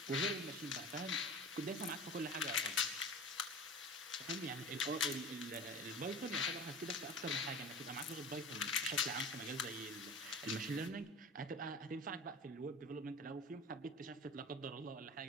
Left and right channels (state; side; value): normal; both; correlation 0.35